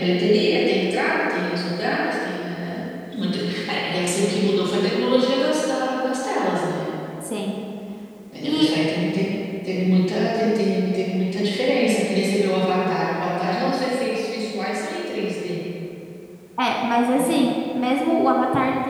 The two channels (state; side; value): identical; both; correlation 1.00